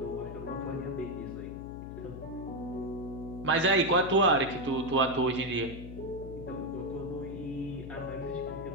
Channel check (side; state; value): left; noise; hum, 10 dB below the sound